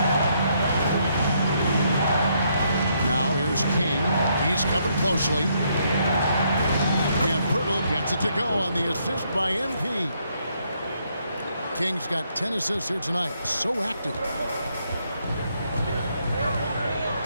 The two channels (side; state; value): both; inverted; correlation -0.73